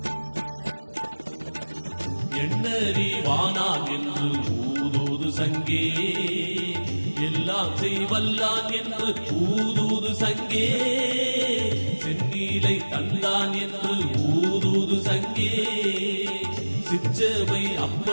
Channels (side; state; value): both; inverted; correlation -1.00